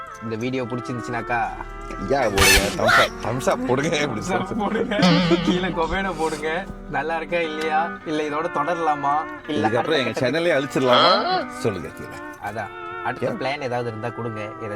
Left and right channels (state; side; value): identical; both; correlation 1.00